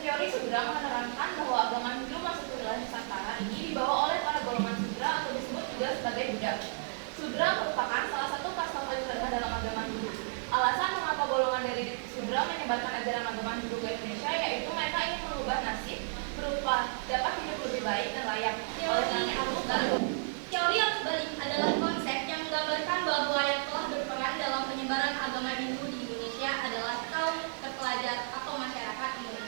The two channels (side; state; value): left; silent; digital silence